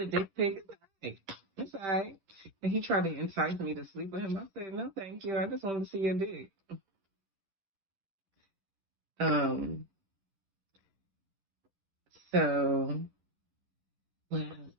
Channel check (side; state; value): left; late; 11 ms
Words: dick pic. It's all right. And he tried to entice me to sleep with him. I said, no, thank you. I just wanted to see your dick. So, well,